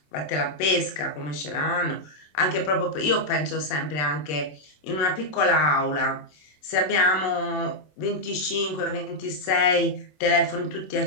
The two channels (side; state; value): right; late; 27 ms